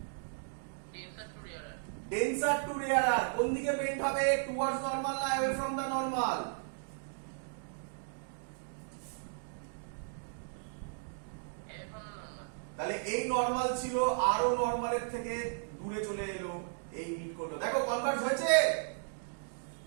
ডেন্সার টু রেয়ারার। কোন দিকে বেন্ড হবে? টুয়ার্ডস নরমাল না অ্যাওয়ে ফ্রম দা নরমাল? তাহলে এই নরমাল ছিল, আরো নরমালের থেকে দূরে চলে এলো, এই মিট করলো। দেখো কনভার্জ হয়েছে।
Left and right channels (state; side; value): silent; left; digital silence